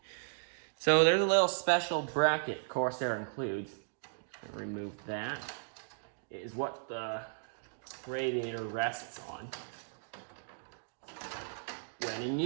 So there's a little special bracket Corsair includes. Remove that. It is what the radiator rests on when in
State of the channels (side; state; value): left; silent; digital silence